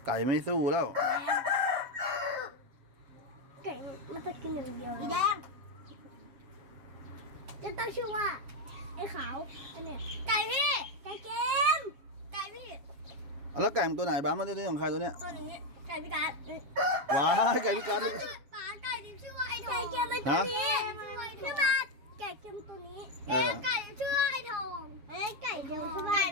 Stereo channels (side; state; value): left; late; 7.3 ms